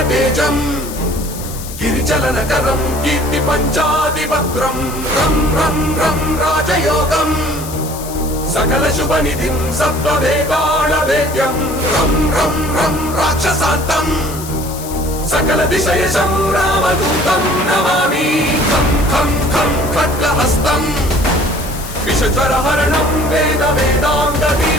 గిరిచలనకరం కీర్తి పంచాదివక్త్రం రం రం రం రాజయోగం సకల శుభనిధిం సప్తవేదాళవేద్యం రం రం రం రాక్షసాంతం సకల దిశయశం రామదూతం నమామి ఖం ఖం ఖం ఖడ్గహస్తం విషజ్వరహరణం వేద వేదాంగ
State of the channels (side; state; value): left; noise; hiss, 13 dB below the sound